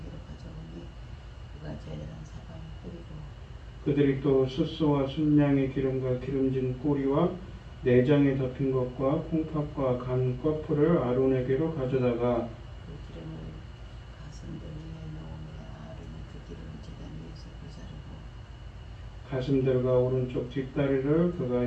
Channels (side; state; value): both; identical; correlation 1.00